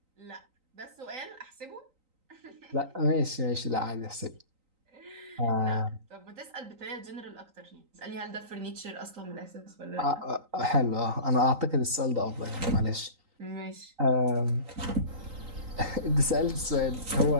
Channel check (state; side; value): late; left; 3.9 ms